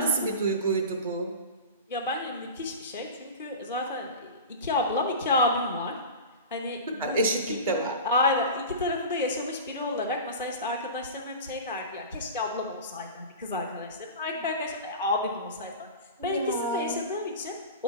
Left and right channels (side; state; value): both; inverted; correlation -0.31